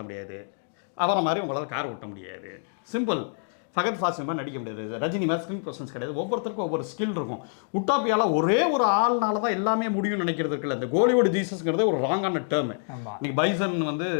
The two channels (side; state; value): right; silent; digital silence